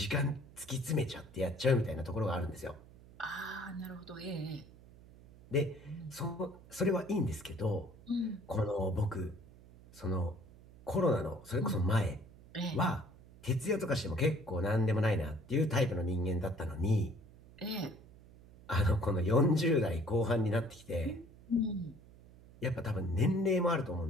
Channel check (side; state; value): right; noise; hum, 22 dB below the sound